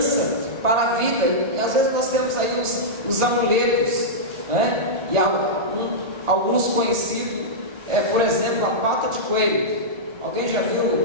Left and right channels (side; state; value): left; late; 1.4 ms